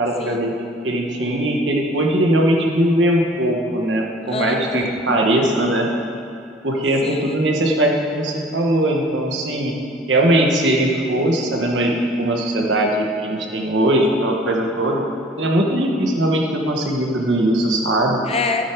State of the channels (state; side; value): normal; both; correlation 0.49